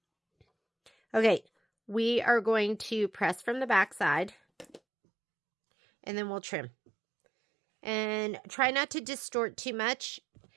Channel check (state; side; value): drops out; left; at 4.8 s